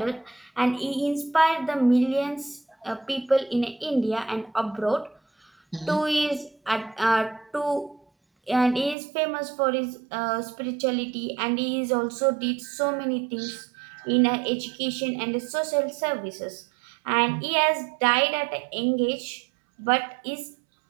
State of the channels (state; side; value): drops out; left; at 9.0 s